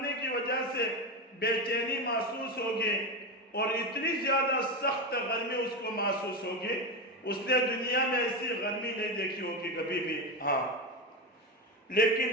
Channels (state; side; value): normal; both; correlation 0.16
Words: کی وجہ سے بے چینی محسوس ہوگی اور اتنی زیادہ سخت گرمی اس کو محسوس ہوگی، اس نے دنیا میں ایسی گرمی نہیں دیکھی ہوگی کبھی بھی، ہاں